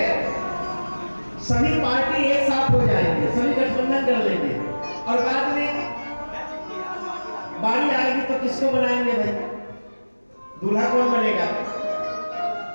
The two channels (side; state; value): both; inverted; correlation -1.00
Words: सभी पार्टी एक साथ हो जाएंगे, सभी गठबंधन कर लेंगे और बाद में बारी आएगी तो किसको बनाएंगे भाई? दूल्हा कौन बनेगा?